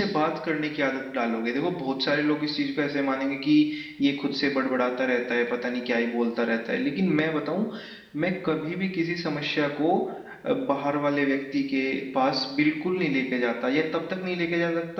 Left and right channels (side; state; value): both; identical; correlation 1.00